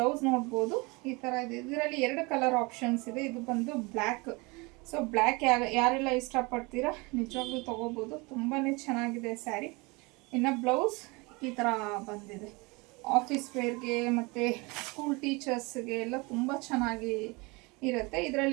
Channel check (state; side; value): quieter; left; 26.6 dB